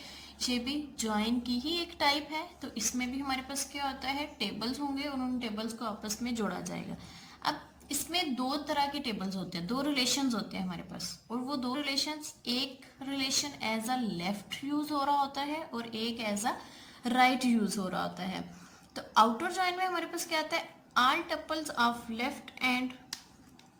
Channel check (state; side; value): identical; both; correlation 1.00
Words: ये भी जॉइन की ही एक टाइप है तो इसमें भी हमारे पास क्या होता है, टेबल्स होंगे और उन टेबल्स को आपस में जोड़ा जाएगा. अब इसमें दो तरह के टेबल्स होते हैं, दो रिलेशंस होते हैं हमारे पास, और वो दो रिलेशंस, एक relation as a left use हो रहा होता है और एक एज अ राइट यूज हो रहा होता है. तो आउटर जॉइन में हमारे पास क्या आता है, all tuples of left and